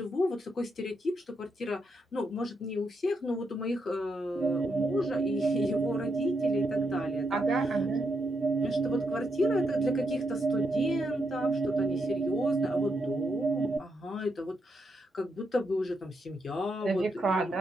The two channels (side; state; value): both; normal; correlation 0.80